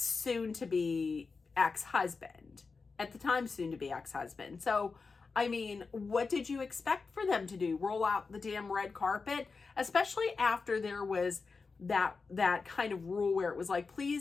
ex-husband. At the time, soon-to-be ex-husband. So, I mean, what did you expect for them to do? Roll out the damn red carpet? Especially after there was that kind of rule where it was like,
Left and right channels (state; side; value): quieter; right; 4.5 dB